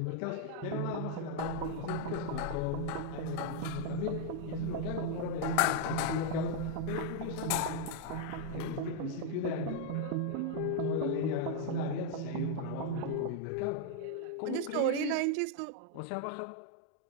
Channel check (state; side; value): different; both; correlation 0.00